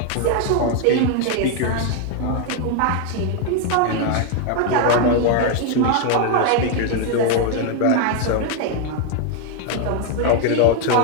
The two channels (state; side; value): different; both; correlation 0.00